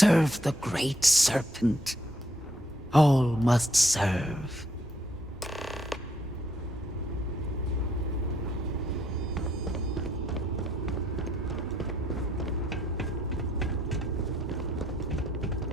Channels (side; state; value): both; normal; correlation 0.71